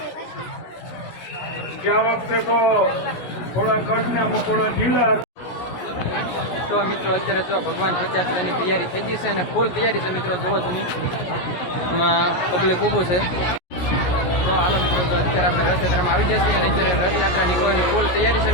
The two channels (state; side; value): late; right; 17 ms